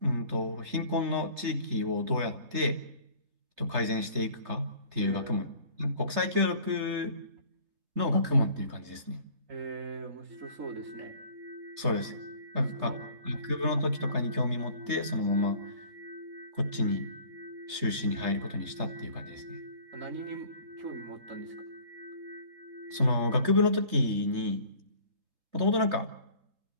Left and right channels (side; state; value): left; late; 3.3 ms